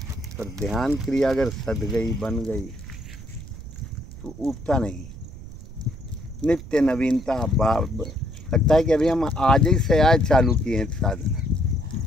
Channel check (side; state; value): right; noise; rumble, 14 dB below the sound